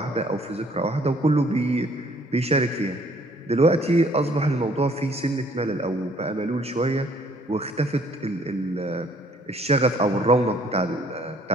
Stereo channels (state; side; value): normal; both; correlation 0.60